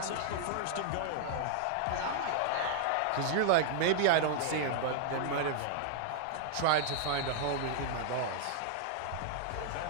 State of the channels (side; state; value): both; different; correlation -0.01